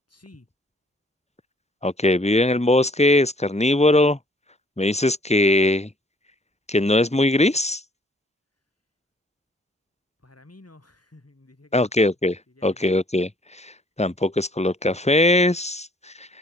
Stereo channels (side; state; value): both; normal; correlation 0.59